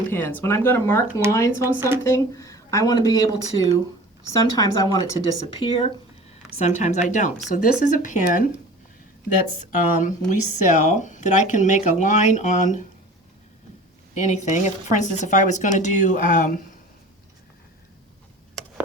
pins. When I'm going to mark lines on something, I want to be able to, sometimes I want it to disappear, sometimes I don't. So this is a pin that's we sell that I can make a line on anything. If, for instance, if I was going to do,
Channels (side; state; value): both; normal; correlation 0.41